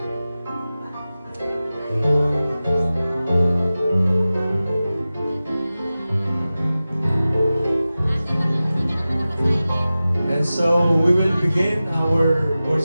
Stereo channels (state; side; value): inverted; both; correlation -0.95